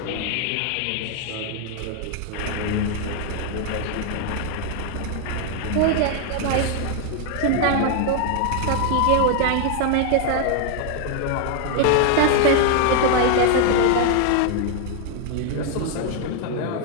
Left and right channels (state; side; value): different; both; correlation 0.00